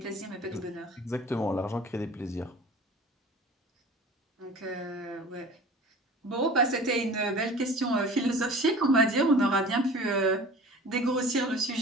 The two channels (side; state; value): both; normal; correlation 0.42